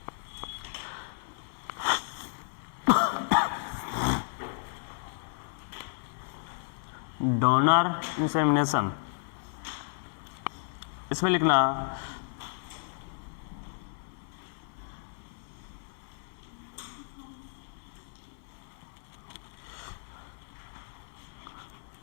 donor insemination, इसमें लिखना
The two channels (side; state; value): right; silent; 56 dB below the other